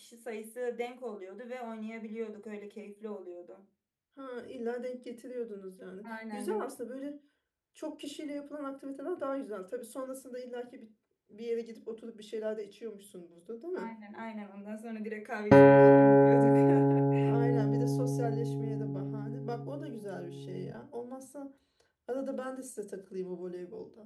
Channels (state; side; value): identical; both; correlation 1.00